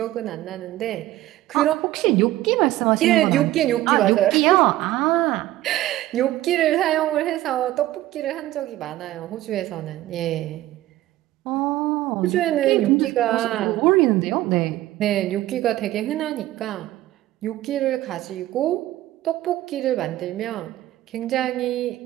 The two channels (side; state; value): left; quieter; 15.5 dB